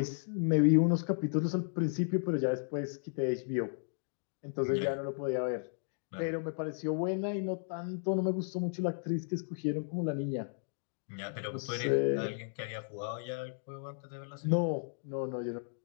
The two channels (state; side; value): silent; right; digital silence